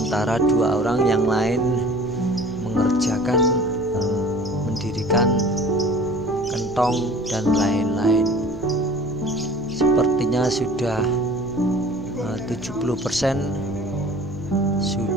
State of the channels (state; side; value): noise; left; hum, 18 dB below the sound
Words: 2 orang yang lain mengerjakan mendirikan kentong dan lain-lain. Sepertinya sudah 70%